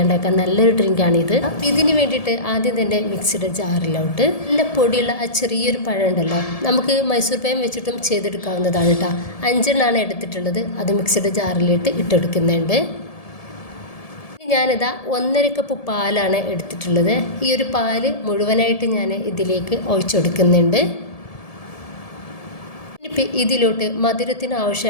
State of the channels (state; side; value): late; right; 1.7 ms